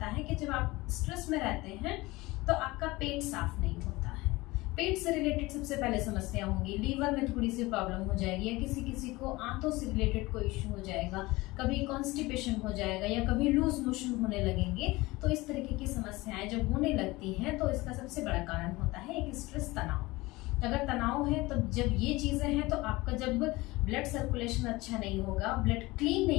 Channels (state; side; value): quieter; right; 21.0 dB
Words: है कि जब आप स्ट्रेस में रहते हैं तो आपका पेट साफ नहीं होता है। पेट से रिलेटेड सबसे पहले समस्या होगी, लीवर में थोड़ी सी प्रॉब्लम हो जाएगी, या किसी किसी को आंतों से रिलेटेड कोई इश्यू हो जाएगा, कभी कॉन्स्टिपेशन हो जाएगा, या कभी लूज मोशन होने लगेंगे। तो इस तरीके की समस्याएं जब होने लगती हैं तो इसका सबसे बड़ा कारण होता है एक स्ट्रेस, तनाव। अगर तनाव है तो जब ये चीजें हैं तो आपका जब ब्लड सर्कुलेशन अच्छा नहीं होगा, ब्लड क्लीन